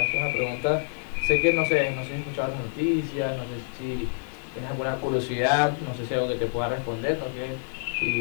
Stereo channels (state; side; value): silent; right; digital silence